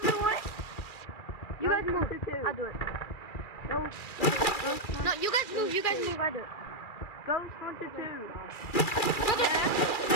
of the way. You guys move. I'll do it. No, you guys move. I do it. Ghost Hunter 2.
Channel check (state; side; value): late; right; 2.3 ms